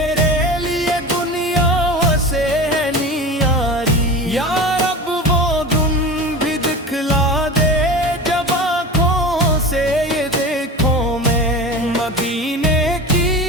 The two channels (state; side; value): normal; both; correlation 0.31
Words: لیے دنیا سے ہے نیاری یار مدینے